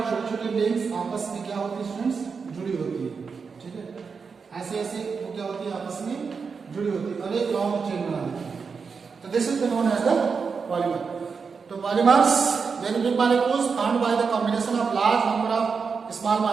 छोटे छोटे लिंक्स आपस में क्या होती है स्टूडेंट्स? जुड़ी होती है. ठीक है, ऐसे ऐसे वो क्या होती है? आपस में जुड़ी होती है और एक लॉन्ग चेन बना देती है. तो this is known as the polymer. तो polymers, very big molecules formed by the combination of large number of small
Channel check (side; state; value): left; quieter; 5.4 dB